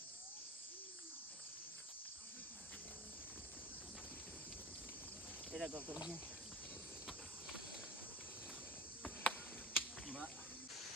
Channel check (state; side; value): normal; both; correlation 0.33